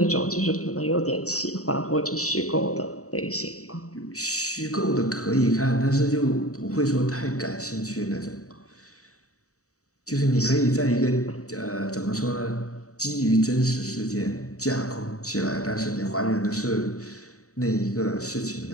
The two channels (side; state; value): right; late; 0.65 ms